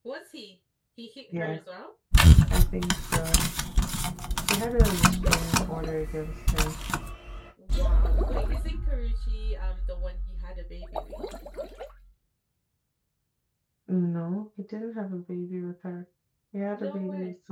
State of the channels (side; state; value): both; identical; correlation 1.00